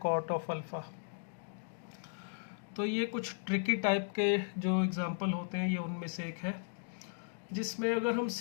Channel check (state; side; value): silent; right; digital silence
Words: ऑफ अल्फ़ा। तो ये कुछ ट्रिकी टाइप के जो एग्जांपल होते हैं ये उनमें से एक है, जिसमें अगर हम